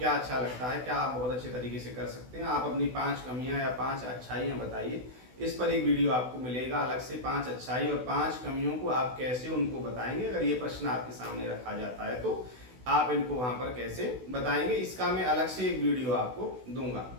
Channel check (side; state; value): left; late; 16 ms